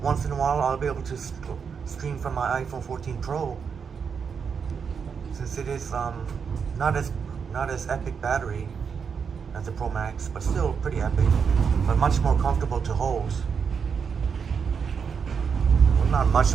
once in a while I'll be able to stream from my iPhone 14 Pro. Since it is not as epic battery as the Pro Max, but still pretty epic, but much more comfortable to hold. Not much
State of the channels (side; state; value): left; quieter; 6.3 dB